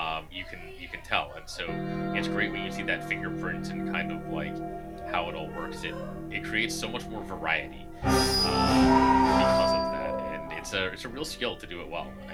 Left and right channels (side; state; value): both; identical; correlation 1.00